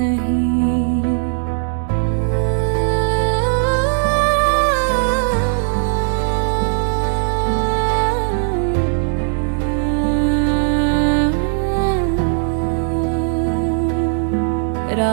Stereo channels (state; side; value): silent; left; 67 dB below the other